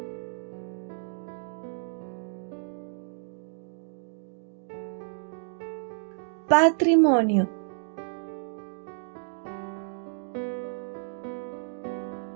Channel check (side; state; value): left; silent; digital silence